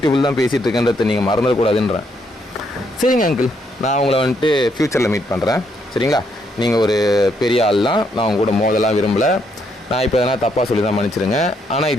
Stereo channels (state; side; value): normal; both; correlation 0.74